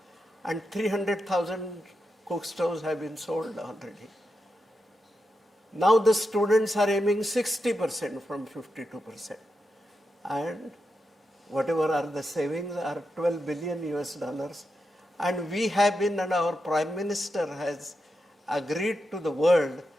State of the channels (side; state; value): both; normal; correlation 0.87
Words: And 300,000 cook stoves have been sold already. Now the students are aiming 60% from 52%. And whatever are the savings are 12 billion US dollars. And we have been, and our Prime Minister has agreed to the world